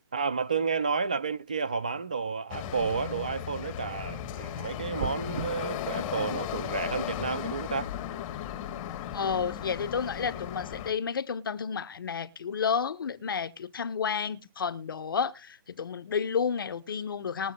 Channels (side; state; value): both; inverted; correlation -0.43